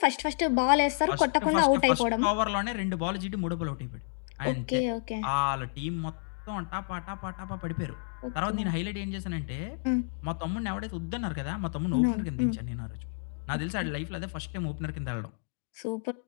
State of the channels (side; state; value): right; silent; digital silence